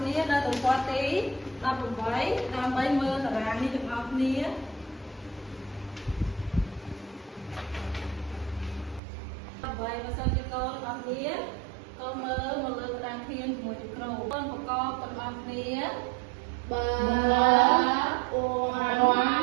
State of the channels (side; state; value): left; drops out; at 9.0 s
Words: ្នានៅទំព័រទី18ដើម្បីមើលតារាងនេះទាំងអស់គ្នាដើម្បីបើសិនជាកូនអស់គ្នាកូនមើលមកលើតារាងធានជាមួយនឹងគ្រូកូនប្រកបទាំងអស់គ្នាបើអ៊ូ